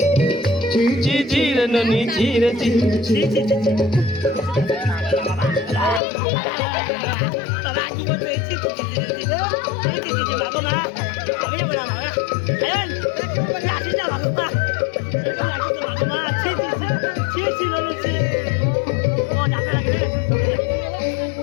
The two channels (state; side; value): drops out; right; at 6.0 s